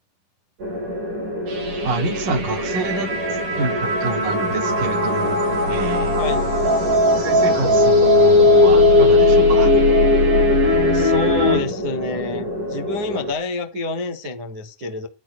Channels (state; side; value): late; left; 10 ms